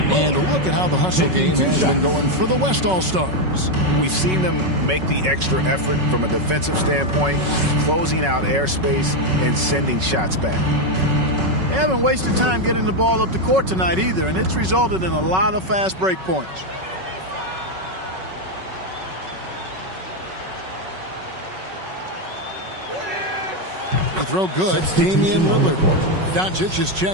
look at how the hustle game has been going for the West All-Stars. We've seen them make the extra effort from a defensive standpoint, closing out airspace and sending shots back. They haven't wasted time getting the ball up the court tonight either, and it's resulted in a lot of fast break points. Free throw good. Damian Lillard. Doncic is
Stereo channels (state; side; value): late; left; 5.3 ms